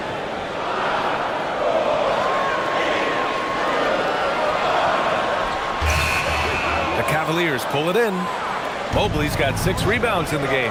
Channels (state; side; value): identical; both; correlation 1.00